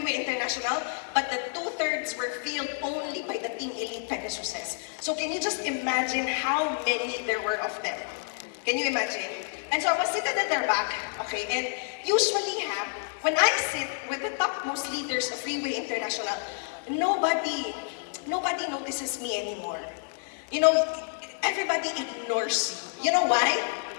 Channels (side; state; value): right; silent; 59 dB below the other